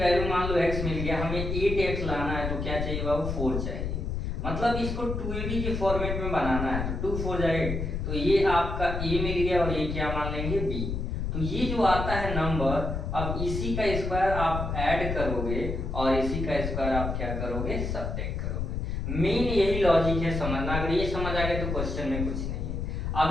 मान लो x मिल गया, हमें 8x लाना है तो क्या चाहिए बाबू, 4 चाहिए। मतलब इसको 2ab के फॉर्मेट में बनाना है तो 2 4 जाए, तो ये आपका a मिल गया और ये क्या मान लेंगे b। तो ये जो आता है नंबर, अब इसी का स्क्वायर आप ऐड करोगे और इसी का स्क्वायर आप क्या करोगे, सब्ट्रैक्ट करोगे। मेन यही लॉजिक है समझना। अगर ये समझ आ गया तो क्वेश्चन में कुछ नहीं।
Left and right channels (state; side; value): noise; left; rumble, 3 dB below the sound